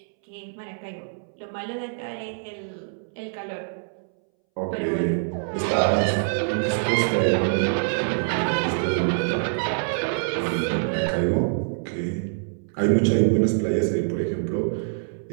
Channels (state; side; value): silent; left; 62 dB below the other